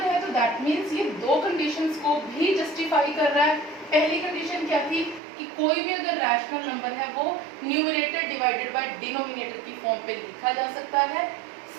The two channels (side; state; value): left; drops out; at 5.2 s